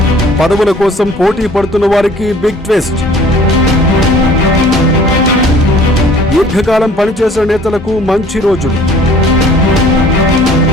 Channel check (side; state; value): both; normal; correlation 0.52